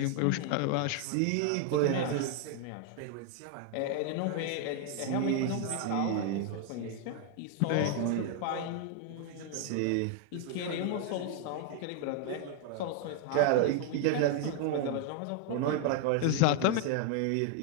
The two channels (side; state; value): both; different; correlation 0.00